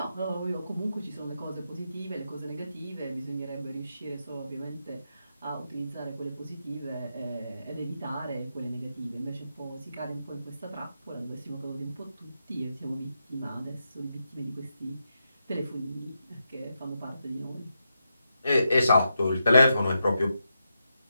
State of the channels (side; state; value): both; inverted; correlation -0.85